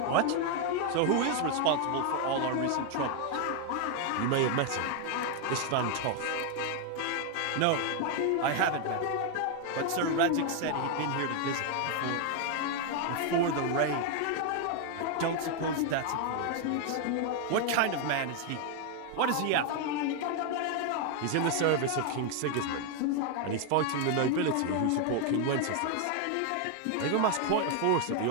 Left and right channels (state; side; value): different; both; correlation 0.00